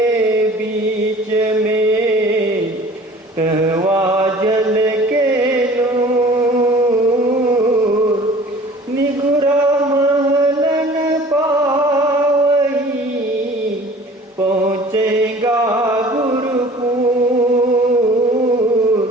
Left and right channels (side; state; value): both; normal; correlation 0.47